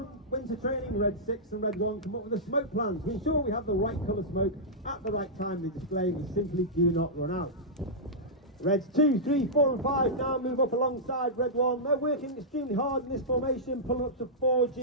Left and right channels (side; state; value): both; normal; correlation -0.12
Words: winter training, Red 6 and Red 1 come up with a smoke plan to ensure we have the right colour smoke at the right time in the display. We simply do not run out. Reds 2, 3, 4 and 5 now move up alongside Red 1. They're working extremely hard in this formation, pulling up to